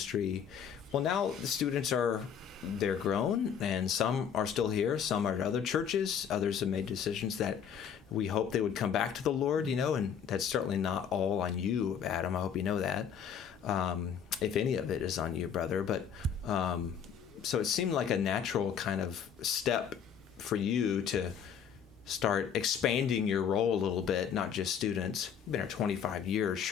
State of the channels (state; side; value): quieter; right; 7.8 dB